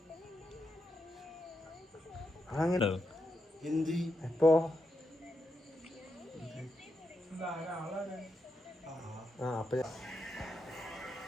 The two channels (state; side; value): normal; both; correlation 0.84